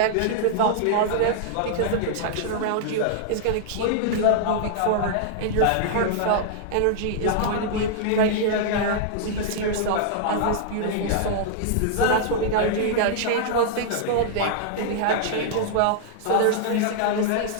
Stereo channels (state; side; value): different; both; correlation -0.01